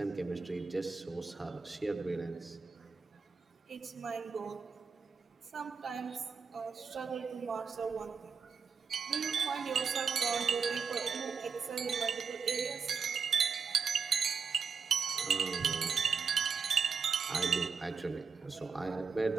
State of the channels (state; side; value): quieter; left; 5.7 dB